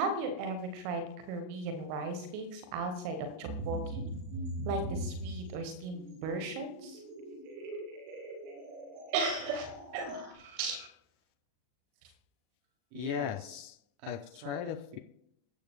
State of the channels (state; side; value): late; left; 39 ms